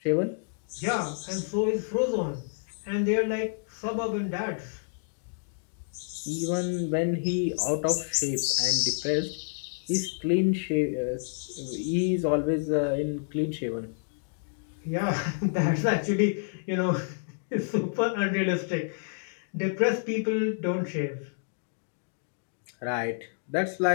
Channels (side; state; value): right; silent; digital silence